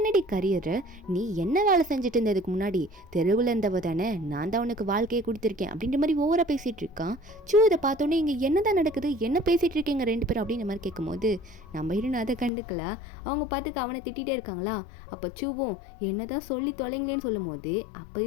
கரியரு, நீ என்ன வேலை செஞ்சுட்டு இருந்ததுக்கு முன்னாடி தெருவில் இருந்தவ தானே, நான் தான் உனக்கு வாழ்க்கையை கொடுத்துருக்கேன் அப்படின்ற மாதிரி ஓவராக பேசிகிட்டு இருக்கான். சூ இதை பார்த்தோன்னே இங்கே என்ன தான் நடக்குது, என்ன பேசிகிட்டு இருக்கீங்க 2 பேரும் அப்படின்ற மாதிரி கேட்கும்போது நம்ம ஹீரோன் அதை கண்டுக்கல. அவங்க பார்த்துக்க அவனை திட்டிகிட்டே இருக்காங்களா. அப்போ சூவும் என்ன தான் சொல்லி தொலைங்களேன்னு சொல்லும் போது அப்போ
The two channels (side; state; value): right; drops out; at 12.5 s